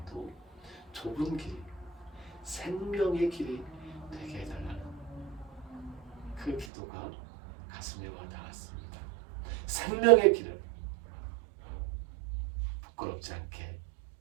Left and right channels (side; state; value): left; drops out; at 6.7 s